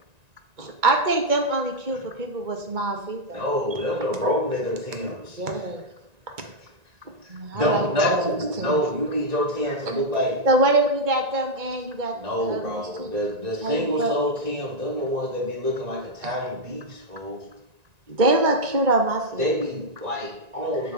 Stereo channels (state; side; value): late; left; 1.9 ms